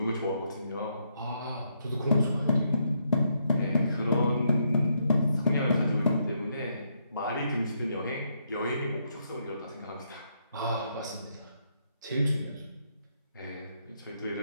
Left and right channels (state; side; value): inverted; both; correlation -0.76